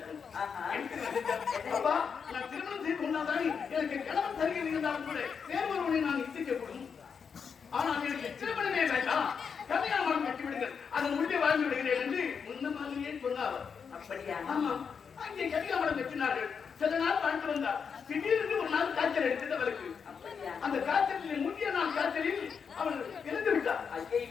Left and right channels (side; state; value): right; quieter; 6.3 dB